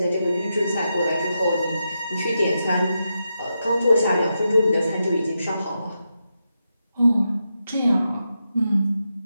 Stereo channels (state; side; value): inverted; both; correlation -0.86